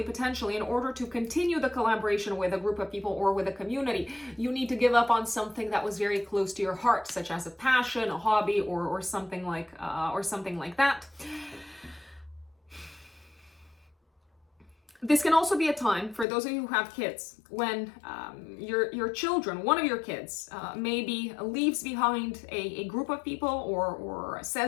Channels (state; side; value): drops out; right; at 16.2 s